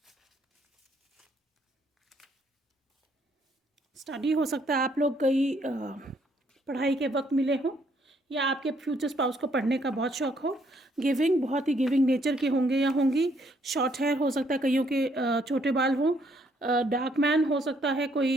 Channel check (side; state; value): both; normal; correlation 0.69